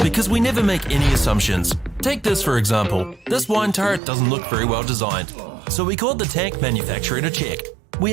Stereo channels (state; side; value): drops out; left; at 4.0 s